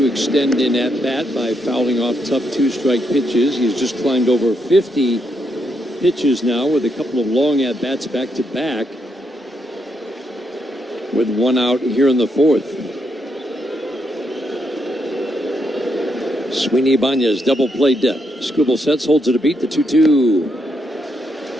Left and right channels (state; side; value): normal; both; correlation 0.78